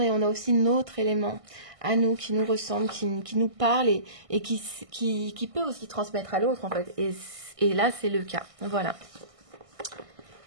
on a aussi notre élément à nous, qui nous ressemble, qui nous parle et qui peut aussi transmettre à l'autre en fait. Et là, c'est le cas. Voilà.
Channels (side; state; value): left; late; 1.6 ms